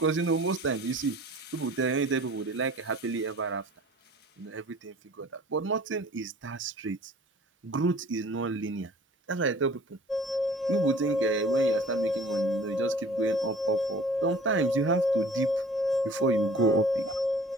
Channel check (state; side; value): normal; both; correlation 0.47